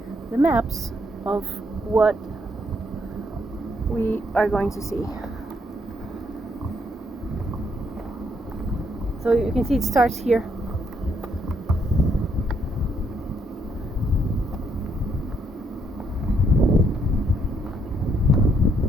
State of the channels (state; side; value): normal; both; correlation 0.73